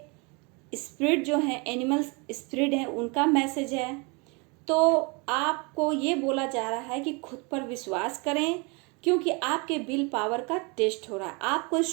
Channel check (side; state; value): left; quieter; 30.4 dB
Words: स्पिरिट जो है, एनिमल स्पिरिट है, उनका मैसेज है। तो आपको ये बोला जा रहा है कि खुद पर विश्वास करें, क्योंकि आपके विल पावर का टेस्ट हो रहा है। आपको